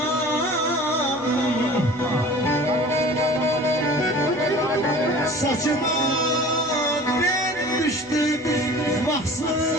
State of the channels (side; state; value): left; noise; hum, 29 dB below the sound